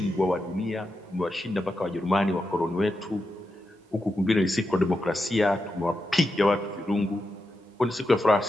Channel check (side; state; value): both; normal; correlation 0.87